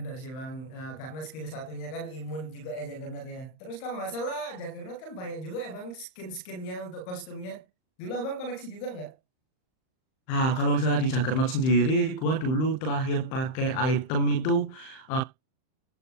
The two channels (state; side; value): late; right; 38 ms